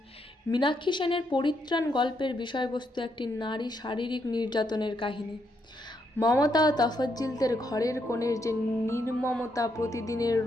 মীনাক্ষী সেনের পরিত্রাণ গল্পের বিষয়বস্তু একটি নারী শারীরিক নির্যাতনের কাহিনী। মমতা ও তফজ্জিলদের ঘরের কোণের যে নির্মমতা, প্রতিদিনের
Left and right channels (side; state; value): both; normal; correlation 0.78